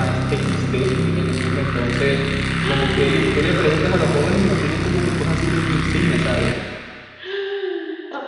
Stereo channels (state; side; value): identical; both; correlation 1.00